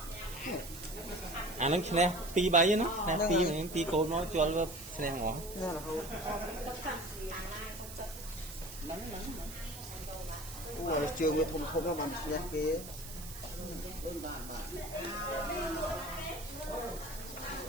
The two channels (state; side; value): noise; right; hiss, 12 dB below the sound